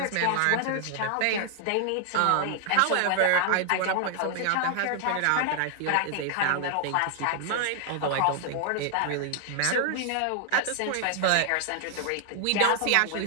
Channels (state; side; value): different; both; correlation 0.00